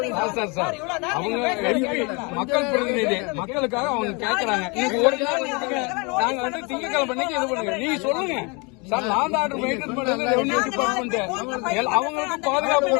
மக்கள் பிரதிநிதி, மக்களுக்காக அவங்க கேட்கறாங்க. இன்னைக்கு ஒரு நாள் நாங்க வந்து திங்கக்கிழமை பண்ணி இது பண்ணுங்க. நீ சொல்லுங்க சார், நான் தான் ஆர்டர் மெயின்டைன் பண்றது ரெவன்யூ டிபார்ட்மெண்ட். அவங்களுக்கு பாதுகாப்பு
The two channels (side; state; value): right; quieter; 30.2 dB